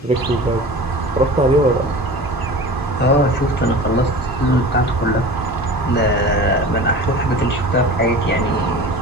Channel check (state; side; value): normal; both; correlation 0.37